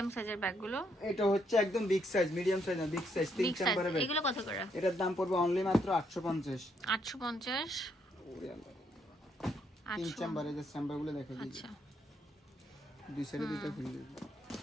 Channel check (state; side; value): normal; both; correlation 0.74